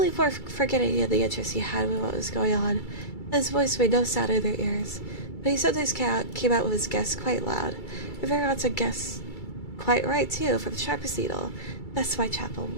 for forgetting the interest he had in what was going on. His voice made no sound in their ears, but he sometimes came out with his guess quite loud, and very often guessed quite right too, for the sharpest needle. That's Whitechapel.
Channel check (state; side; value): late; right; 2.3 ms